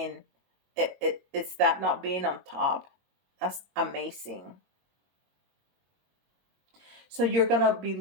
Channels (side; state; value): left; late; 22 ms